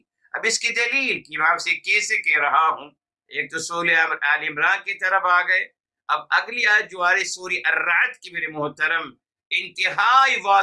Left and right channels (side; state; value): both; identical; correlation 1.00